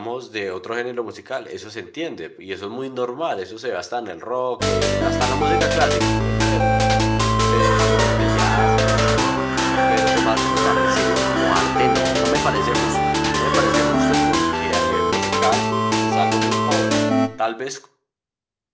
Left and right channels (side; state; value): both; identical; correlation 1.00